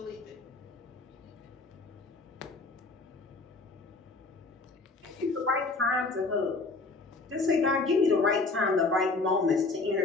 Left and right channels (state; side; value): quieter; right; 3.6 dB